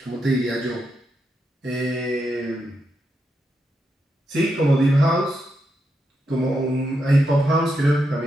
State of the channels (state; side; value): normal; both; correlation 0.84